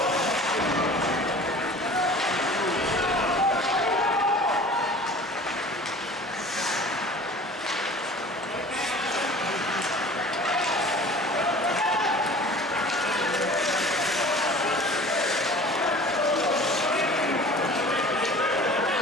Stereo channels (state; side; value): normal; both; correlation 0.43